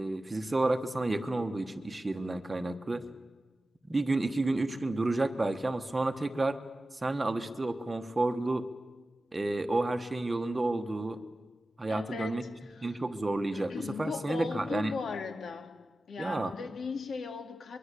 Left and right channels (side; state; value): both; normal; correlation 0.95